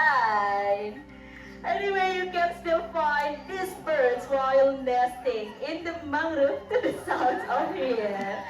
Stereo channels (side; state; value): both; identical; correlation 1.00